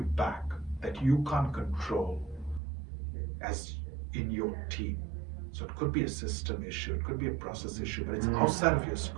back that you can't control as in your team? So it could be a system issue, it could be a process issue, but it's outside of your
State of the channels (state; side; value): drops out; left; at 2.6 s